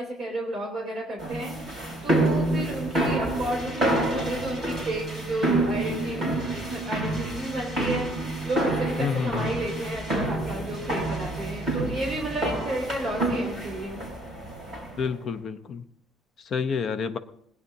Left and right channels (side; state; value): both; normal; correlation 0.62